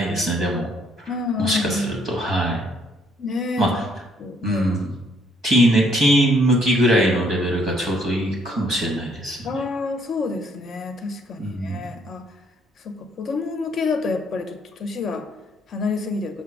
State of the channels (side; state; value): both; normal; correlation 0.66